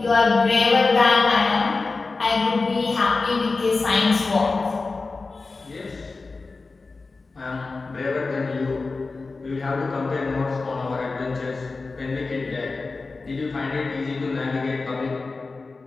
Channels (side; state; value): right; quieter; 3.9 dB